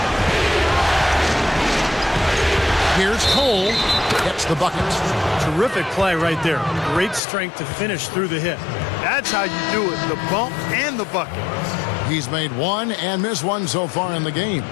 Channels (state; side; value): drops out; right; at 7.2 s